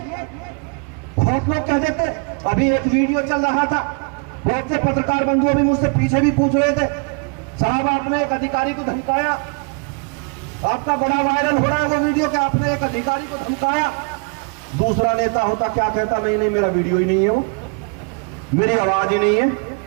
बहुत लोग कह देते, अभी एक वीडियो चल रहा था, बहुत से पत्रकार बंधु भी मुझसे पीछे भी पूछ रहे थे, साहब आपने एक अधिकारी को धमकाया, आपका बड़ा वायरल हो रहा है वो वीडियो कि आपने एक अधिकारी को धमकाया। दूसरा नेता होता क्या कहता, नहीं नहीं मेरा वीडियो ही नहीं है, वो मेरी आवाज ही नहीं है।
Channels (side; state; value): left; quieter; 35.4 dB